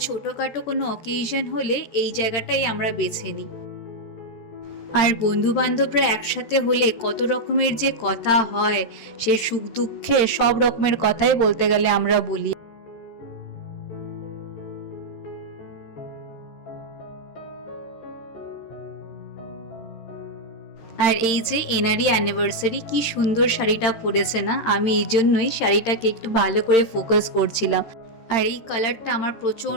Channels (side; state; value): right; late; 13 ms